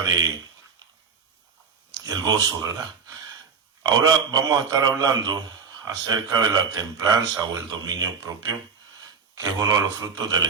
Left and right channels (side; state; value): left; quieter; 5.8 dB